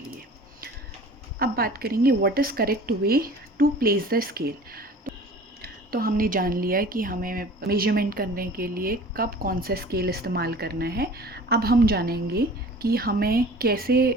अब बात करेंगे what is correct way to place the scale. तो हमने जान लिया कि हमें मेजरमेंट करने के लिए कब कौन सा स्केल इस्तेमाल करना है। अब हम जानेंगे कि हमें कैसे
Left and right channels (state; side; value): normal; both; correlation 0.43